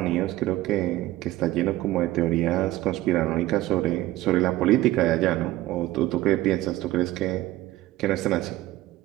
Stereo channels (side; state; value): left; quieter; 16.4 dB